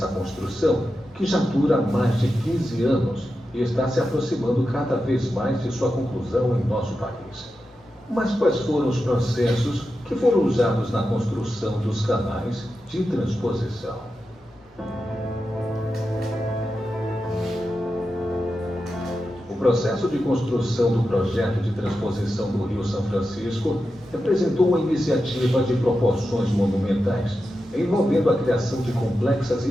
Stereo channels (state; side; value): normal; both; correlation 0.90